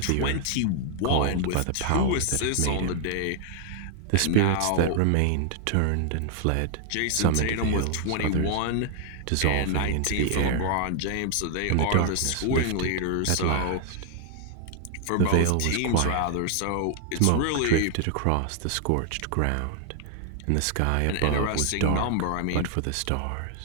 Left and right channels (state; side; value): different; both; correlation 0.00